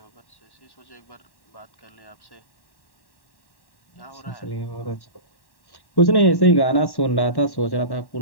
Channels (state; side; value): late; right; 1.1 ms